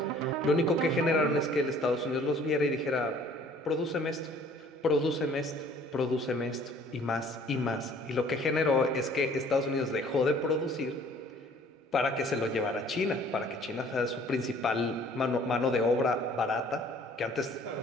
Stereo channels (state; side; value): normal; both; correlation 0.55